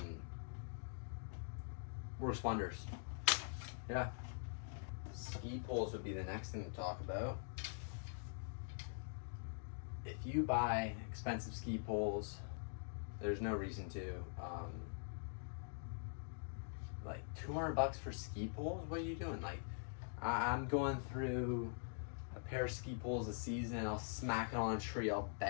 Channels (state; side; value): silent; right; digital silence